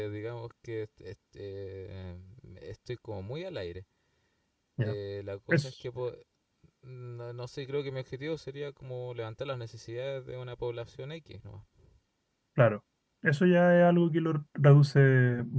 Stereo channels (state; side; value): identical; both; correlation 1.00